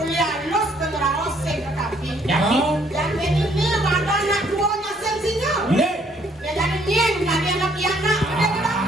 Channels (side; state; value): both; normal; correlation 0.65